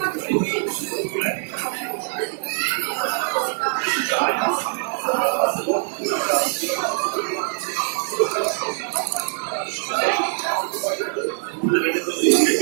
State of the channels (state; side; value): silent; left; 63 dB below the other